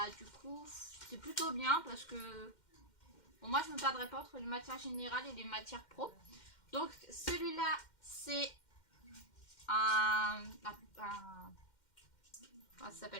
du coup c'est plutôt bien parce que bon, moi je me perdrai pas entre les matières générales et les matières pro. Donc celui-là c'est comment ça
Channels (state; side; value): late; right; 2.1 ms